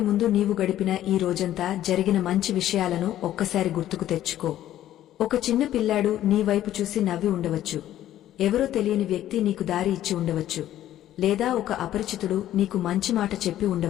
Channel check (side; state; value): right; quieter; 12.7 dB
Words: ముందు నీవు గడిపిన ఈ రోజంతా జరిగిన మంచి విషయాలను ఒక్కసారి గుర్తుకు తెచ్చుకో. ఒక చిన్న పిల్లాడు నీ వైపు చూసి నవ్వి ఉండవచ్చు, ఎవరో తెలియని వ్యక్తి నీకు దారి ఇచ్చి ఉండవచ్చు, లేదా ఒక అపరిచితుడు నీకు మంచి మాట చెప్పి